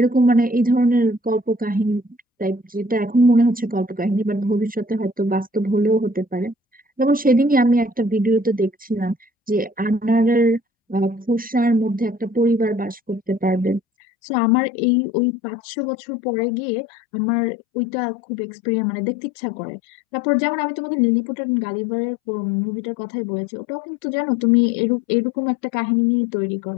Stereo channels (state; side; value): drops out; right; at 13.8 s